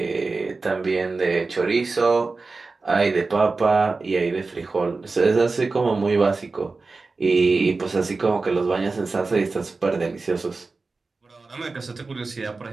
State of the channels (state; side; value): quieter; left; 3.9 dB